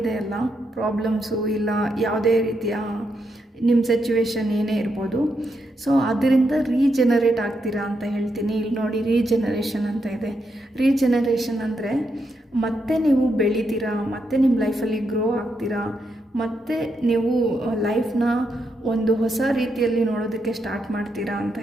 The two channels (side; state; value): both; normal; correlation 0.81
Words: ಅಲ್ಲ ಪ್ರಾಬ್ಲಮ್ಸು, ಇಲ್ಲ ಯಾವುದೇ ರೀತಿಯ ನಿಮ್ಮ ಸಿಚುವೇಶನ್ ಏನೇ ಇರ್ಬೋದು, ಸೊ ಅದರಿಂದ ರೀಜನರೇಟ್ ಆಗ್ತೀರಾ ಅಂತ ಹೇಳ್ತೀನಿ. ಇಲ್ಲಿ ನೋಡಿ ರೀಜನರೇಷನ್ ಅಂತ ಇದೆ. ರೀಜನರೇಷನ್ ಅಂದರೆ ಮತ್ತೆ ನೀವು ಬೆಳಿತೀರಾ, ಮತ್ತೆ ನಿಮ್ಮ ಲೈಫಲ್ಲಿ ಗ್ರೋ ಆಗ್ತೀರಾ, ಮತ್ತು ನೀವು ಲೈಫ್ನ ಒಂದು ಹೊಸ ರೀತಿಯಲ್ಲಿ ನೋಡೋದಕ್ಕೆ ಸ್ಟಾರ್ಟ್ ಮಾಡ್ತೀರಾ ಅಂತ